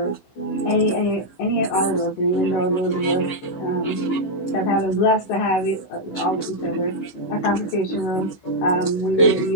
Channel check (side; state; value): right; late; 15 ms